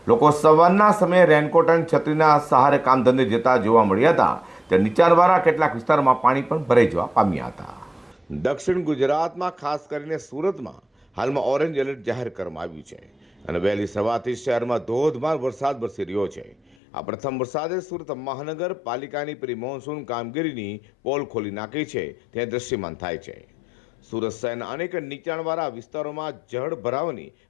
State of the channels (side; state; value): right; drops out; at 16.8 s